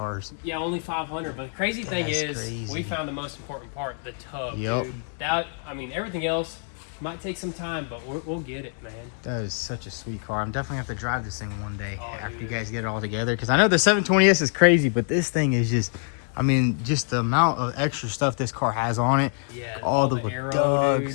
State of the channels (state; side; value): silent; right; 55 dB below the other